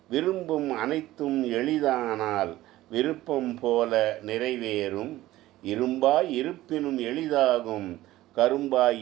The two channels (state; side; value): quieter; left; 16.0 dB